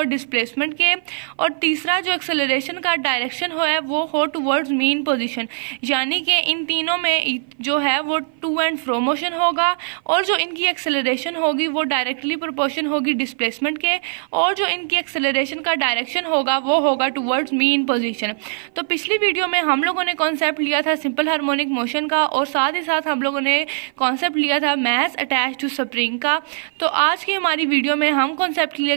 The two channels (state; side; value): silent; left; 56 dB below the other